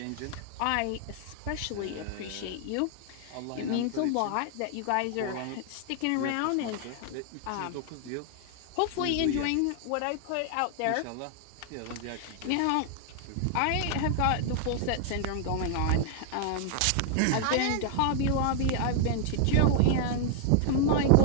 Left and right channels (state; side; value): different; both; correlation 0.00